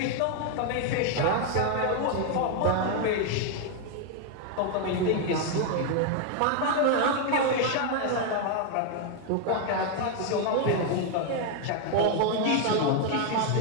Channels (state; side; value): different; both; correlation 0.01